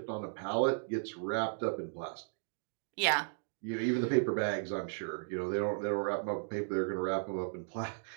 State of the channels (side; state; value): left; silent; digital silence